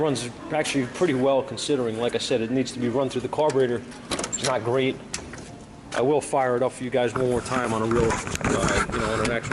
actually pretty well, considering, like I said, it needs to be run through the carburetor. It's not great. I will fire it up for you guys one more time on a real, you know, on an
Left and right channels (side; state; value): both; identical; correlation 1.00